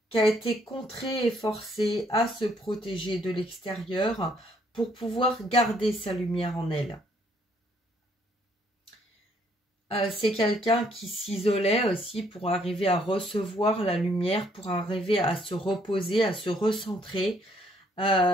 qui a été contraint et forcé à se protéger de l'extérieur pour pouvoir garder sa lumière en elle. C'est quelqu'un qui s'isolait aussi pour arriver à recevoir la lumière, pour arriver à se reposer, à se recentrer,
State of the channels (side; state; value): both; normal; correlation 0.67